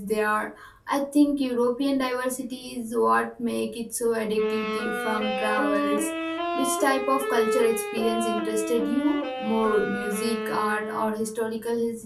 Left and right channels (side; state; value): both; identical; correlation 1.00